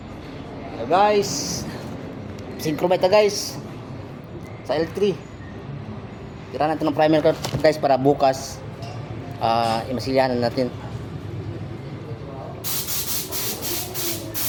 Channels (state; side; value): identical; both; correlation 1.00